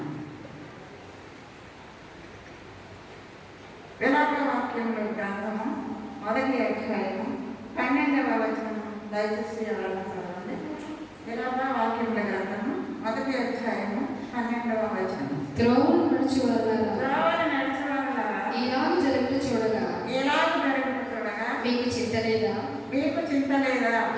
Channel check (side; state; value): both; identical; correlation 1.00